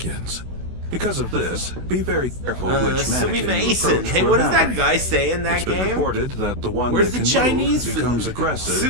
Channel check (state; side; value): late; left; 16 ms